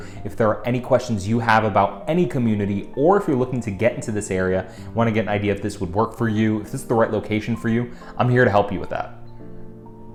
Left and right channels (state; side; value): identical; both; correlation 1.00